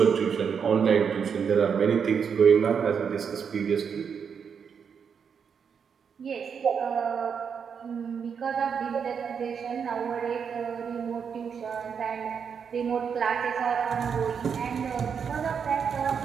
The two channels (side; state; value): left; quieter; 6.8 dB